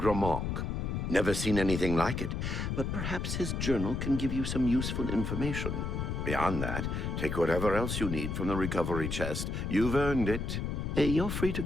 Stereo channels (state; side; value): noise; left; rumble, 2 dB below the sound